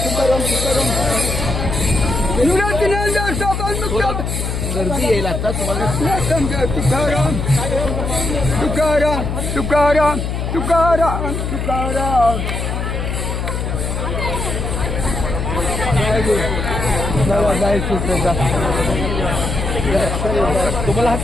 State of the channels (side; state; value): left; noise; hum, 2 dB below the sound